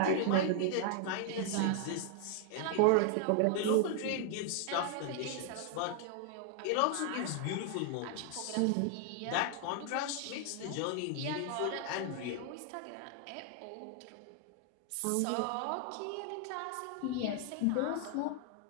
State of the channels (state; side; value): different; both; correlation 0.00